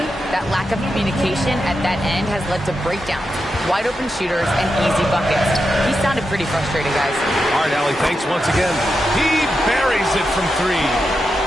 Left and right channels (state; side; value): normal; both; correlation 0.87